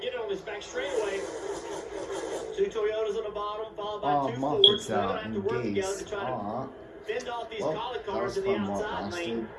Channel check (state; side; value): identical; both; correlation 1.00